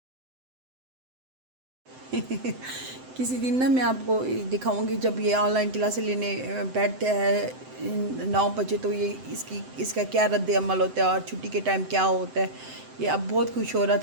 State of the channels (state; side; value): late; left; 7.8 ms